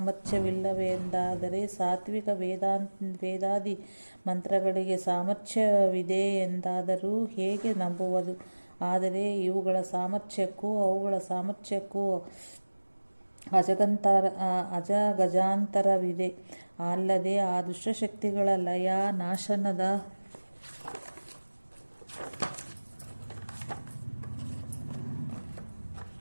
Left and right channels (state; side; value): inverted; both; correlation -1.00